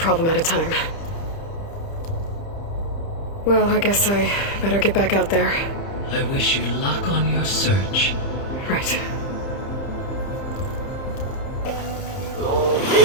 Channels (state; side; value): late; right; 30 ms